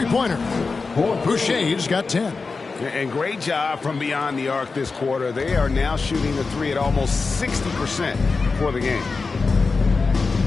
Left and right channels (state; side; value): quieter; right; 4.3 dB